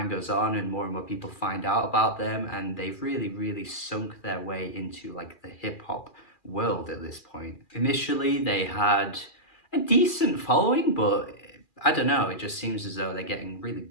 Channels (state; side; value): late; right; 2.4 ms